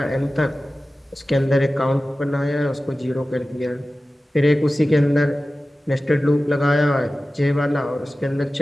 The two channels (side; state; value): both; normal; correlation 0.96